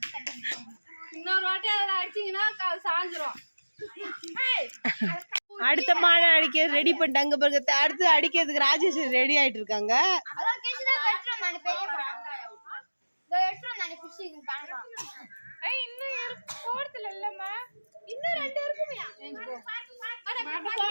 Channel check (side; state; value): both; inverted; correlation -1.00